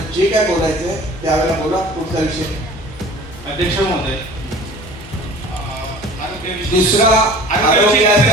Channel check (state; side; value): normal; both; correlation 0.44